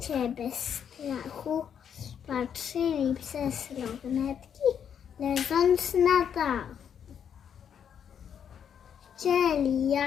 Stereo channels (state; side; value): quieter; right; 8.2 dB